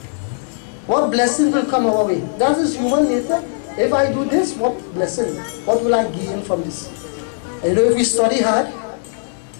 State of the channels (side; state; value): right; silent; digital silence